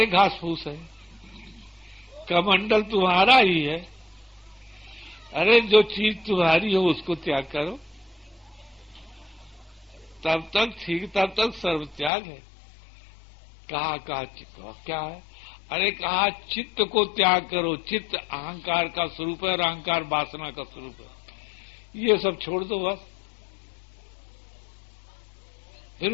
घास फूस है, कमंडल तुम्हारा ही है। अरे जो चीज तुम्हारी हो उसको त्याग करो, तब तक ठीक, तब तक सर्व त्याग है। कहा क्या है? अरे कहा चित्त को त्याग करो, चित्त अहंकार का स्वरूप है और अहंकार वासना का स्वरूप है, ये सब छोड़ दो बस, फिर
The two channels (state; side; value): drops out; right; at 12.1 s